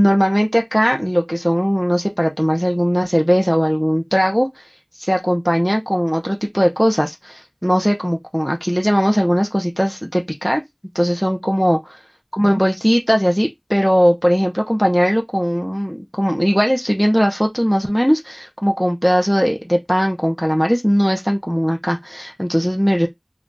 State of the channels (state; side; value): identical; both; correlation 1.00